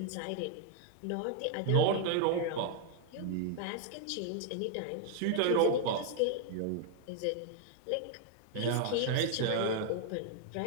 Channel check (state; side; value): different; both; correlation 0.00